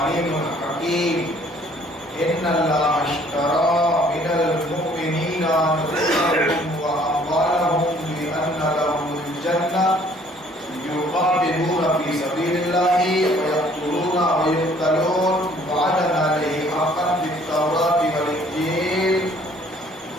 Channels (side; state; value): both; normal; correlation 0.58